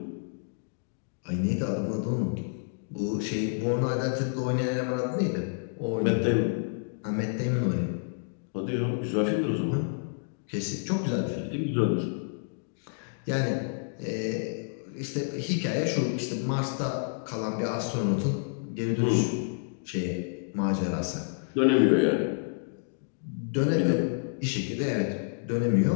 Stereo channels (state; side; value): silent; right; digital silence